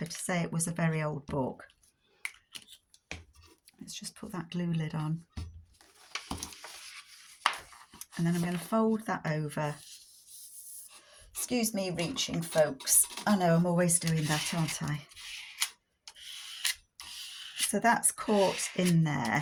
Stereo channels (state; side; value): identical; both; correlation 1.00